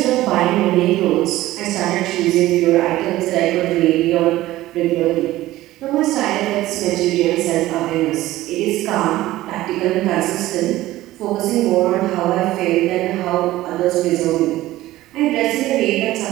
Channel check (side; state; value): left; quieter; 16.2 dB